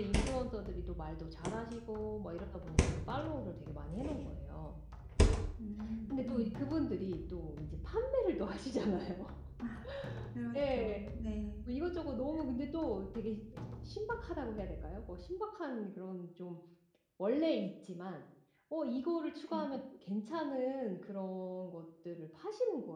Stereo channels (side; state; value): both; identical; correlation 1.00